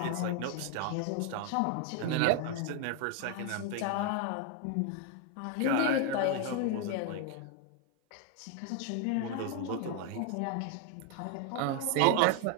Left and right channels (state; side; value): different; both; correlation 0.01